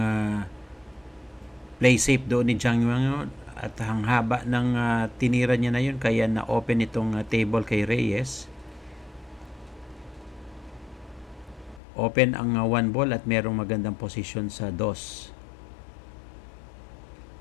play safe doon ni Jiang Yuan at ang haba ng tinira niya na yun kaya na-open itong table kay Reyes. Open ang 1 ball at merong magandang position sa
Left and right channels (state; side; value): drops out; right; at 11.8 s